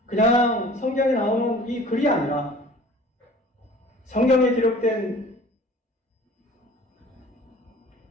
그냥 성경에 나오는 이 글이 아니라 성경에 기록된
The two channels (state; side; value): normal; both; correlation 0.47